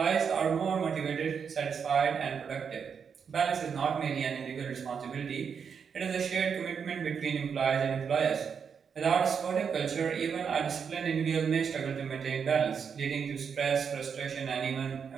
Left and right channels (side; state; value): left; quieter; 6.7 dB